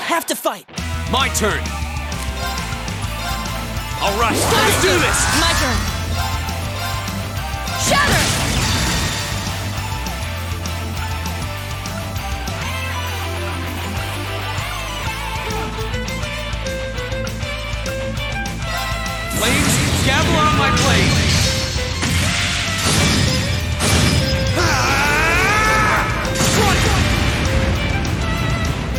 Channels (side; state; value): both; identical; correlation 1.00